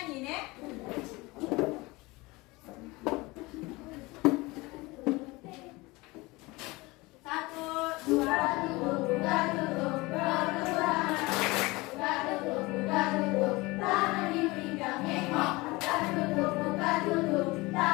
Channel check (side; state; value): right; quieter; 22.8 dB